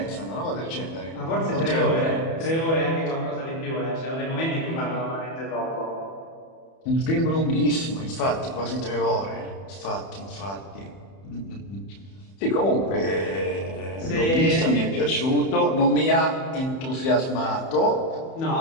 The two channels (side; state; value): right; late; 31 ms